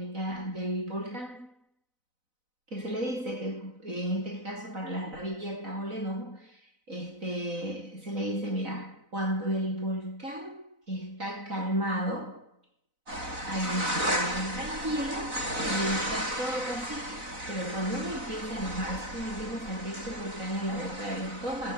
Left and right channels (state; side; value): late; left; 4.0 ms